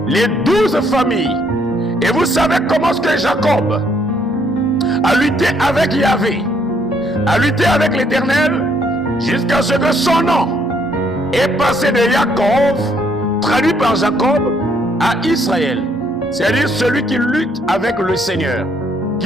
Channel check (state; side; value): normal; both; correlation 0.69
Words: les 12 familles. Et vous savez comment est-ce que Jacob a lutté avec Yahvé, a lutté avec l'Éternel, jusqu'à ce que son nom est passé de Jacob, traduit par Jacob, à Israël. C'est-à-dire celui qui lutte avec le Seigneur,